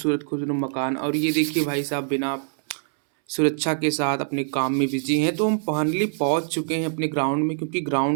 मकान और ये देखिए भाई साहब बिना सुरक्षा के साथ अपने काम में बिज़ी हैं। तो हम फाइनली पहुँच चुके हैं अपने ग्राउंड में क्योंकि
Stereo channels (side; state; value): left; silent; 63 dB below the other